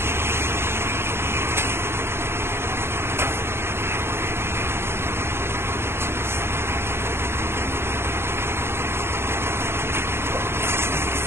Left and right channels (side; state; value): left; late; 0.12 ms